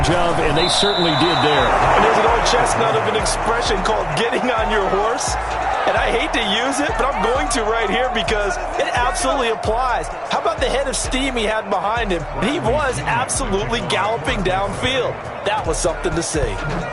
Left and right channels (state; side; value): identical; both; correlation 1.00